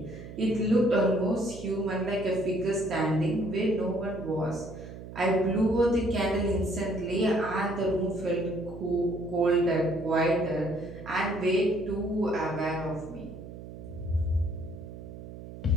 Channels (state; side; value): noise; right; hum, 13 dB below the sound